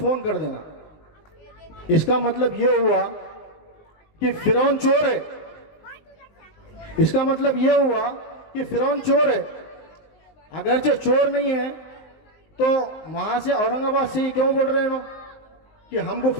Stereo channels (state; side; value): late; right; 19 ms